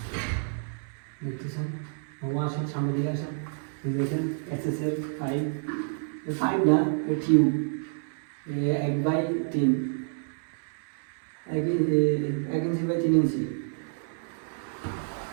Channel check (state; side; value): silent; left; 59 dB below the other